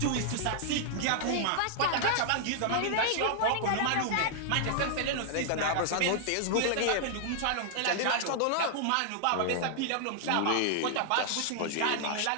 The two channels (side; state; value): both; different; correlation -0.01